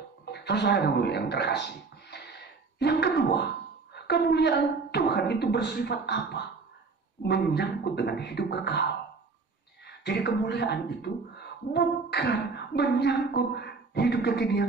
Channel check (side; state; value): left; quieter; 4.4 dB